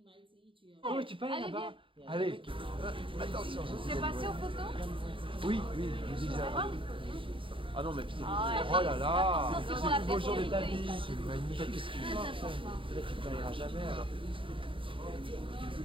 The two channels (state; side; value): late; left; 0.25 ms